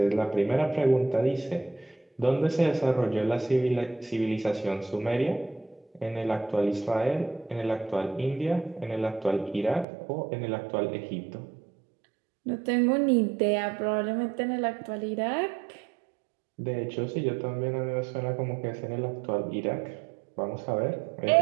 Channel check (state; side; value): drops out; left; at 9.9 s